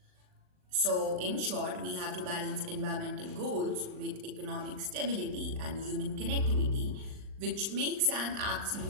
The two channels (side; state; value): left; late; 39 ms